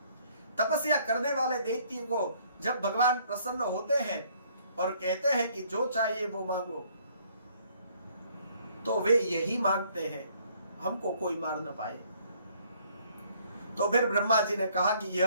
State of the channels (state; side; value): inverted; both; correlation -0.63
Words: तपस्या करने वाले दैत्य को जब भगवान प्रसन्न होते हैं और कहते हैं कि जो चाहिए वो मांगो, तो वे यही मांगते हैं, हमको कोई मार न पाए। तो फिर ब्रह्मा जी ने कहा कि यह